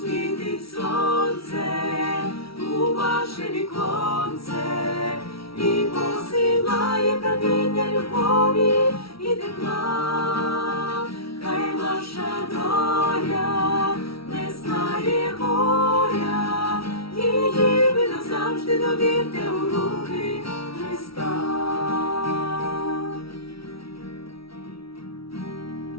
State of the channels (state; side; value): late; right; 0.75 ms